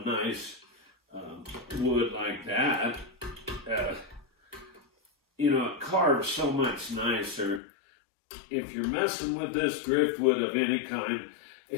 nice wood like that, you know, it carves so much nicer. If you're messing with this driftwood of any kind,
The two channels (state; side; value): drops out; right; at 7.6 s